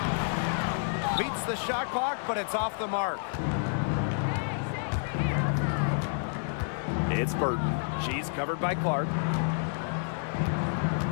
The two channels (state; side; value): silent; right; digital silence